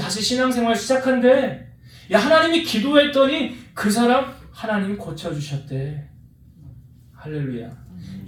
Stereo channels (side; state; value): both; identical; correlation 1.00